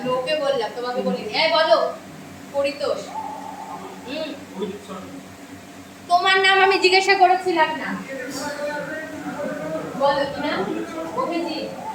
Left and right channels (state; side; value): identical; both; correlation 1.00